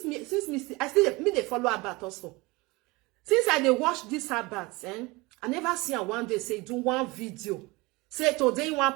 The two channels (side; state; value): left; quieter; 23.6 dB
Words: me I still me they follow about also. Since I they watch this about, I never see her one day say do one video. Say today you